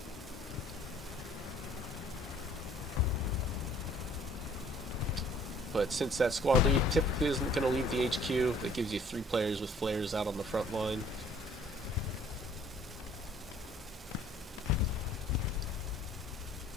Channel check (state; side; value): normal; both; correlation 0.57